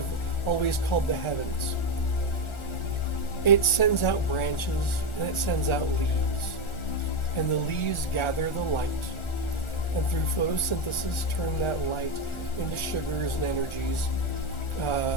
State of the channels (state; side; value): late; right; 1.4 ms